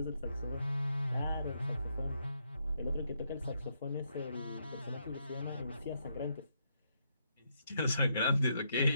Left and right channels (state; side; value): inverted; both; correlation -0.77